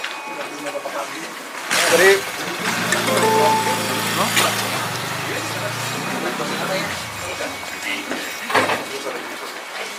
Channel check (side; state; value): both; identical; correlation 1.00